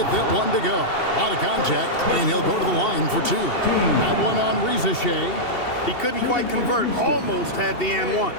that one to go. A lot of contact, and he'll go to the line for 2. That one on Risacher. He couldn't quite convert. Almost had the and one.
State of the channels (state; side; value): late; right; 2.7 ms